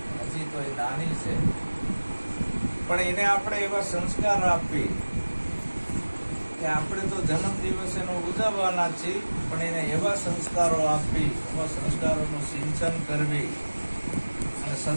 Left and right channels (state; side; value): inverted; both; correlation -1.00